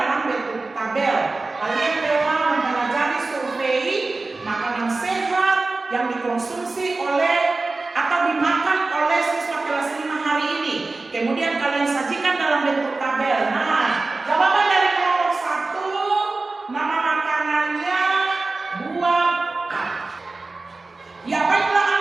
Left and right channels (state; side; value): quieter; left; 3.5 dB